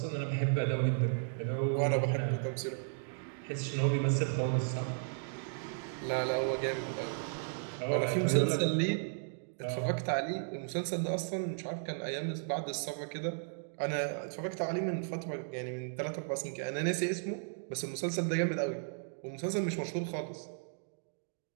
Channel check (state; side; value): silent; left; digital silence